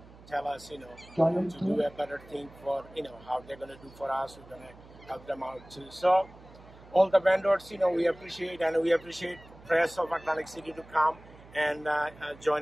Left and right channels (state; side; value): noise; right; hum, 21 dB below the sound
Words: tell us, to do a better thing for, how they're going to do for us. We're going to help them out too. So all the vendors, we appreciate, and we appreciate press of Atlantic City to come and